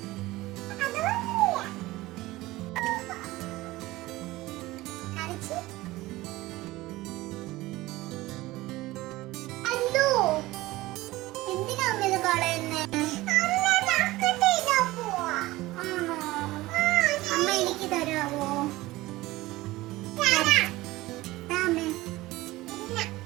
എന്തിനാ അമ്മ ഇത് കളയുന്നേ? അമ്മ എനിക്ക് തരാവോ?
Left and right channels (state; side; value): quieter; left; 18.7 dB